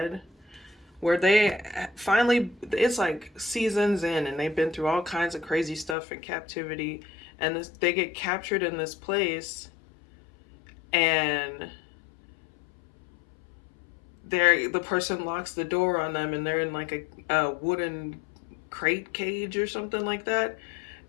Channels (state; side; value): drops out; right; at 6.0 s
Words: where they finally, it's like seasons in and they've been through all kinds of crazy stuff in captivity, and they get captured in this place, and the person locks the door on them, and they're in like a wooden crate cage or something like that,